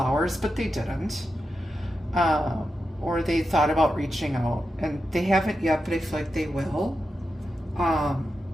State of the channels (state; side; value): normal; both; correlation 0.89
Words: but they didn't. Or they thought about reaching out, and they haven't yet, but I feel like they will